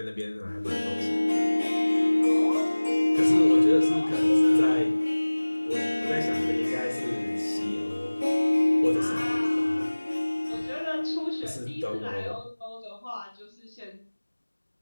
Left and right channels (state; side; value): inverted; both; correlation -1.00